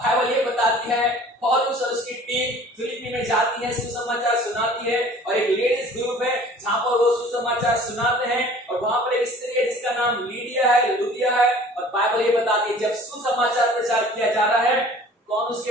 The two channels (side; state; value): both; normal; correlation 0.48